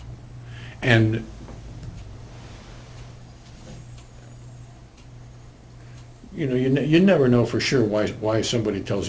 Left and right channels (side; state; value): both; identical; correlation 1.00